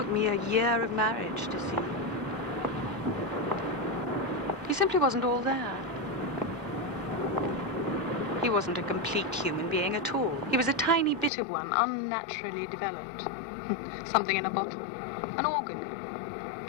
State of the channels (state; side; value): drops out; right; at 11.3 s